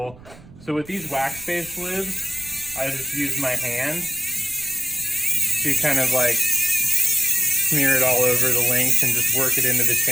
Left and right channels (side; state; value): right; noise; rumble, 21 dB below the sound